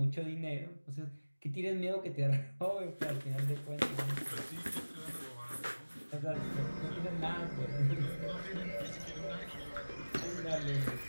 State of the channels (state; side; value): inverted; both; correlation -1.00